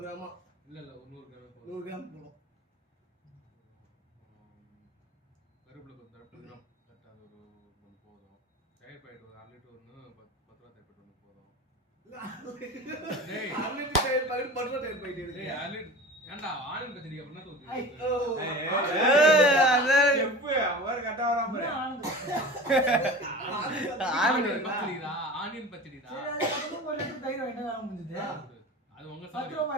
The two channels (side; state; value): both; normal; correlation 0.35